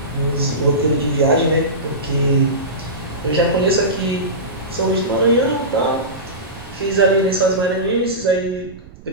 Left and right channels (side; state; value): right; noise; rumble, 20 dB below the sound